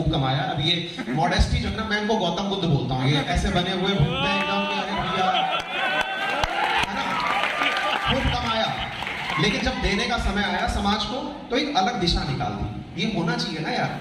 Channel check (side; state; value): both; identical; correlation 1.00